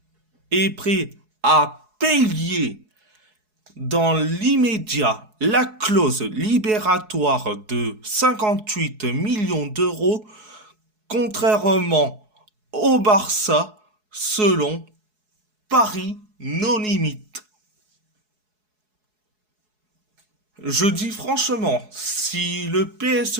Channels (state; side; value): late; left; 4.7 ms